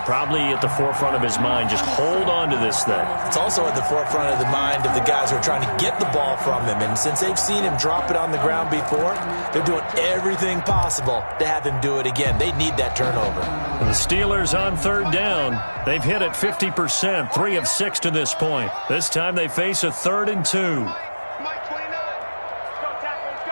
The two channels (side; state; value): both; inverted; correlation -1.00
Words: at the forefront of his mind. Just hold on to this thing. It's also at the forefront of the mind of the guys who are trying to get the ball from him. And since they've seen him drop it on the ground before, they're doing everything possible to have him do it again. They need that turnover. And the Steelers on 3rd down. They've hit it 50%, 3 of 6 to this point. This time they face a 3rd and 2.